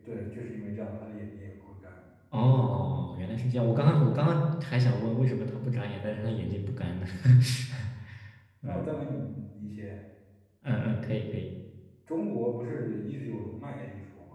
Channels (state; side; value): identical; both; correlation 1.00